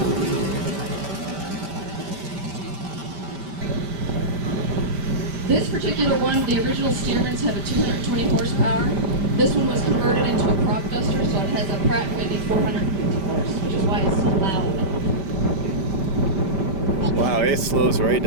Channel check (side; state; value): left; late; 5.1 ms